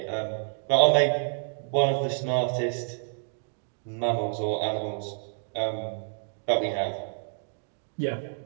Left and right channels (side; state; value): left; silent; digital silence